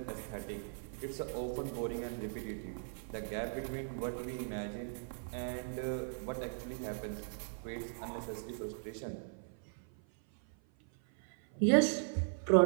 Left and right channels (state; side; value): silent; left; 52 dB below the other